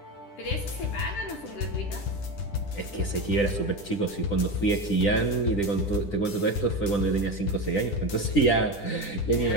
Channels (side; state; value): right; late; 10 ms